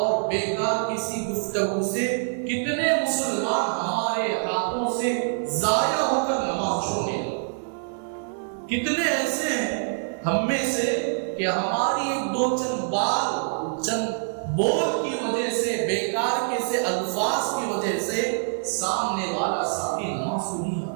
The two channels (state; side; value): silent; left; digital silence